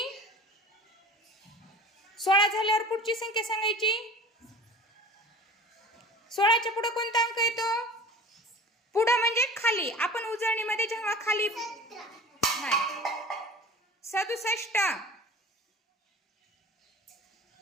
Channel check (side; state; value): both; normal; correlation 0.40